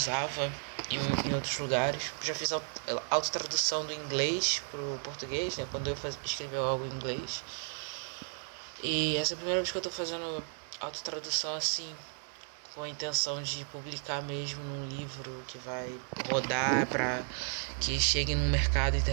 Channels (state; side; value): silent; left; 55 dB below the other